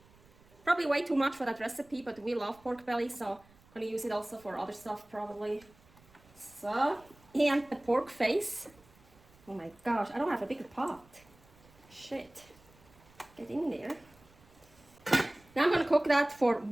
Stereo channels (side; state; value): right; noise; rumble, 28 dB below the sound